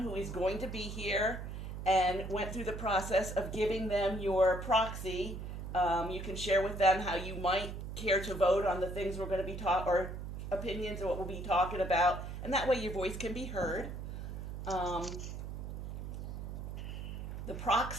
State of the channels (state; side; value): noise; right; hum, 7 dB below the sound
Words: is going to be here and went through the process of giving them your proxy. You can share with them how you might care to vote on the things we're going to be or opinions of what we'll be talking about, and that way your voice can be heard. The